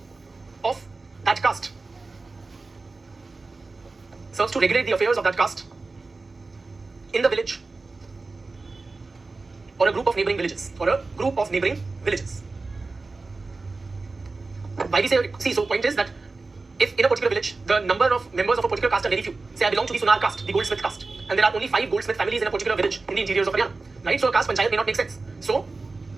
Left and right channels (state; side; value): quieter; left; 3.7 dB